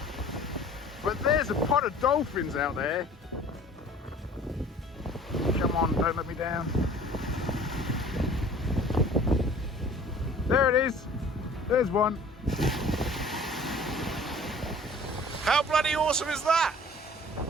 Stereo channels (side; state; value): both; normal; correlation 0.48